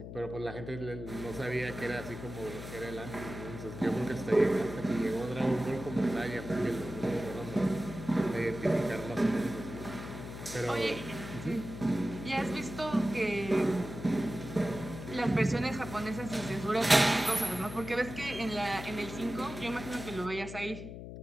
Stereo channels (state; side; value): noise; left; hum, 10 dB below the sound